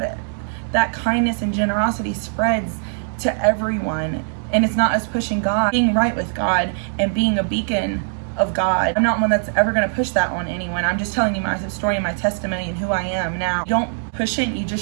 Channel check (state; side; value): silent; left; digital silence